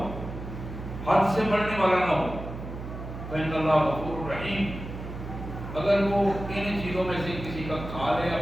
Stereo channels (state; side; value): noise; right; hum, 9 dB below the sound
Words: حد سے بڑھنے والا نہ ہو، فإن اللہ غفور رحیم، اگر وہ ان چیزوں میں سے کسی کا کھا لے،